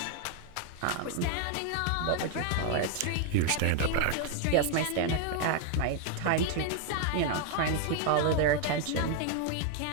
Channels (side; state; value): both; different; correlation 0.00